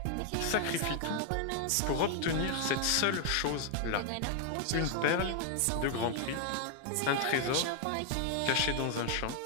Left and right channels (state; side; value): different; both; correlation 0.00